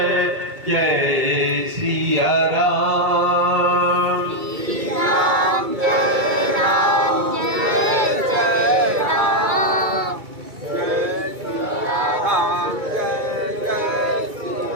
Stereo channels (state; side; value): late; left; 2.3 ms